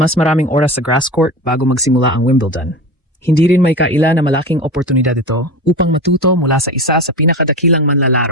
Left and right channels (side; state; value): both; normal; correlation 0.28